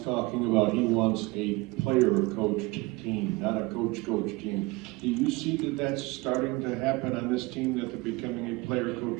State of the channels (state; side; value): quieter; left; 22.8 dB